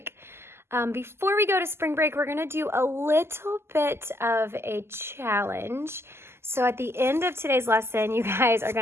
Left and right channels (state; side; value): late; left; 0.12 ms